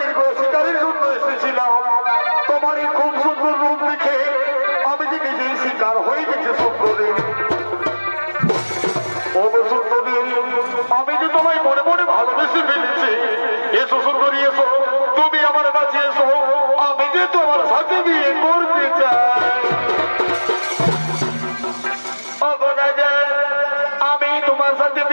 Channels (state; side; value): inverted; both; correlation -1.00